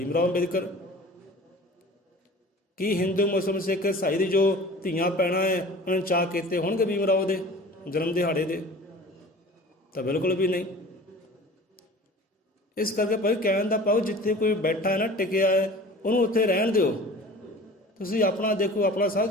ਰਾਓ ਅੰਬੇਦਕਰ। ਕੀ ਹਿੰਦੂ ਮੁਸਲਿਮ ਸਿੱਖ ਈਸਾਈ ਦੀ ਜੋ ਧੀਆਂ ਪੈਣਾ ਹੈ ਉਹਨਾਂ ਨੇ ਚਾਅ ਕੀਤੇ ਹੋਣਗੇ ਭੀਮ ਰਾਓ ਦੇ ਜਨਮ ਦਿਹਾੜੇ ਦੇ? ਤਾਂ ਬਿਲਕੁਲ ਵੀ ਨਹੀਂ। ਇਸ ਕਰਕੇ ਭਾਈ ਕਹਿਣ ਦਾ ਪਾਓ, ਜਿੱਥੇ ਕੋਈ ਬੈਠਾ ਹੈ ਨਾ, ਟਿਕਿਆ ਹੈ, ਉਹਨੂੰ ਉੱਥੇ ਰਹਿਣ ਦਿਓ। ਤੁਸੀਂ ਆਪਣਾ ਦੇਖੋ, ਆਪਣਾ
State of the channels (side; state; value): both; normal; correlation 0.42